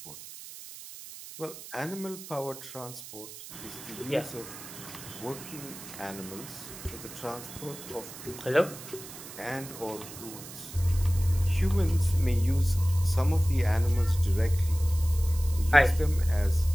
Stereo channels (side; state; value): right; noise; hiss, 14 dB below the sound